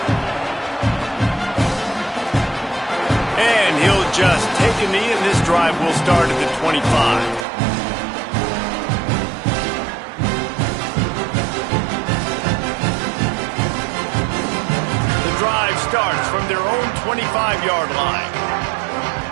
And he'll just take a knee, and this drive will start at the 25. The drive starts from their own 25-yard line.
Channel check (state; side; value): drops out; left; at 7.5 s